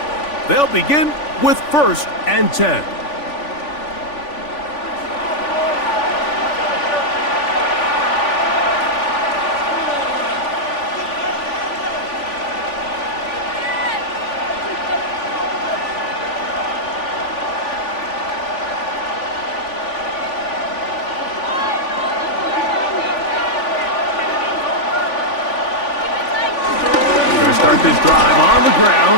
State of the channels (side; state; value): right; late; 3.5 ms